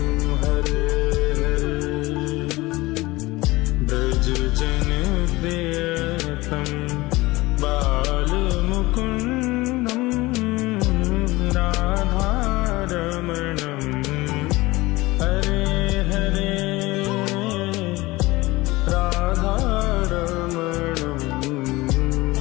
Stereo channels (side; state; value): right; quieter; 20.6 dB